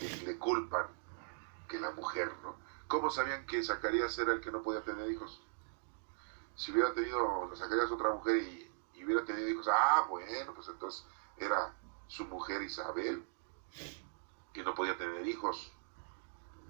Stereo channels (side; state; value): left; silent; digital silence